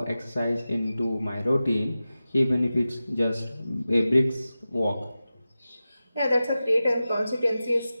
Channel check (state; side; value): inverted; both; correlation -0.94